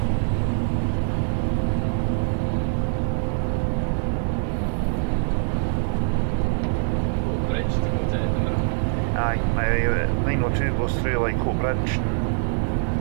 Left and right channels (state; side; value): silent; left; digital silence